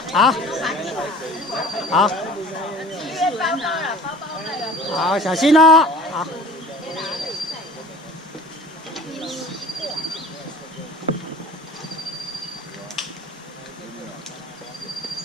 好，小心哦，好。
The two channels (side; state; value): both; normal; correlation 0.44